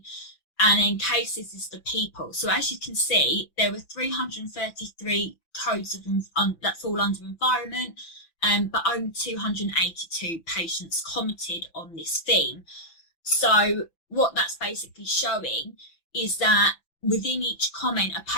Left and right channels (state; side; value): late; right; 5.9 ms